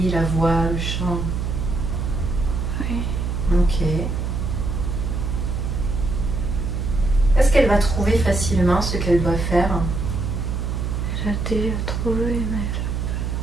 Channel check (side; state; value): right; noise; hum, 1 dB below the sound